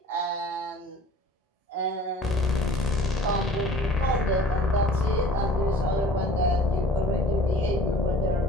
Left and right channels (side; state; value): both; normal; correlation 0.49